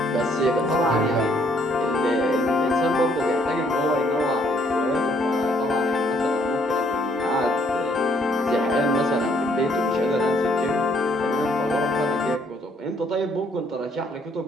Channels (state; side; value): normal; both; correlation 0.67